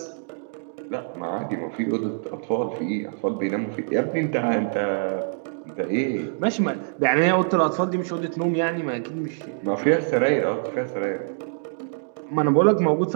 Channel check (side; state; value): left; silent; digital silence